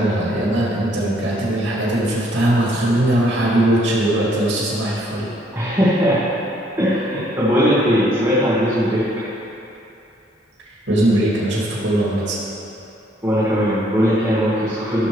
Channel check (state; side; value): normal; both; correlation 0.66